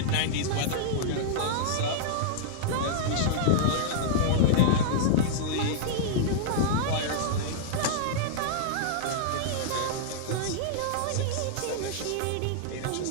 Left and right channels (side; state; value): both; different; correlation -0.02